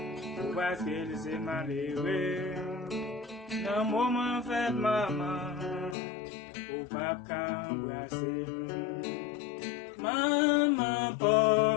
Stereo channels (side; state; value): right; drops out; at 6.0 s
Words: parce qu'il s'est malheureux. Dans le moment fait maman, ou papa embrasser. Maman